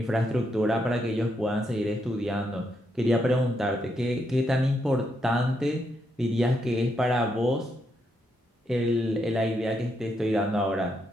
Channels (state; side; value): normal; both; correlation 0.79